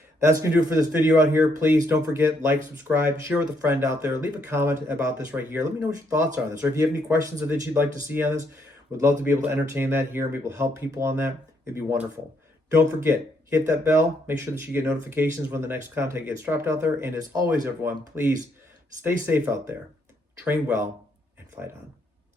That's going to do it for this video out here. Please don't forget, like, subscribe, share with a friend out there. Leave a comment about this right here. Let me know what your thoughts are on this. Or if you have any questions that you'd like to see on this, would love to be able to entertain that here and be able to help people on that. It'd be wonderful. Don't forget, hit that bell. Make sure that you get notifications when the next content gets dropped out there. And as always, everyone, please stay safe out there. Train well and fight on.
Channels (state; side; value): normal; both; correlation 0.73